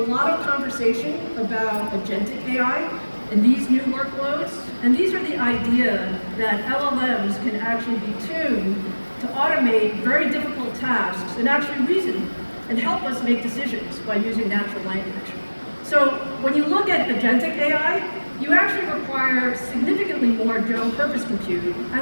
of conversation about agentic AI and these new workloads. And these are the idea that LLMs can actually be tuned to automate very difficult tasks and actually reason and help us make decisions by using natural language. So when you look at agentic AI, you actually require significantly more general purpose compute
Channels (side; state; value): both; inverted; correlation -1.00